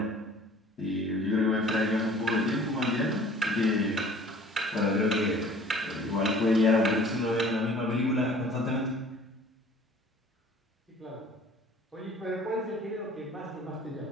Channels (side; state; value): both; normal; correlation 0.50